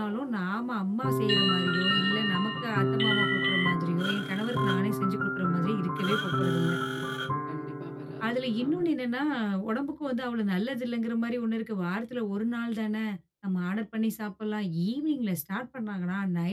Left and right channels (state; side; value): identical; both; correlation 1.00